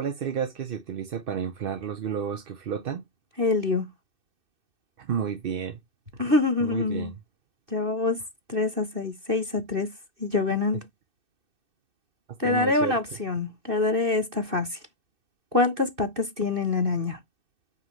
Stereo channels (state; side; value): late; left; 2.6 ms